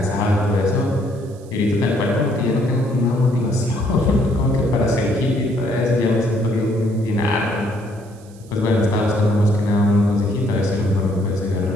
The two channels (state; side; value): noise; right; hiss, 27 dB below the sound